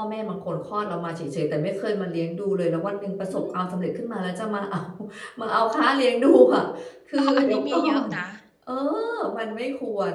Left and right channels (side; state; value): both; identical; correlation 1.00